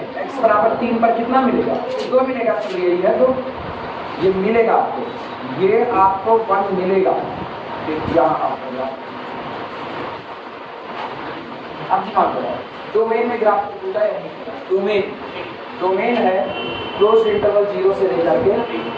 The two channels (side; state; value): both; identical; correlation 1.00